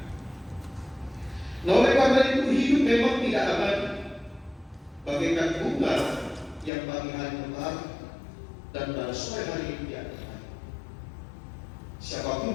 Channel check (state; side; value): drops out; right; at 6.7 s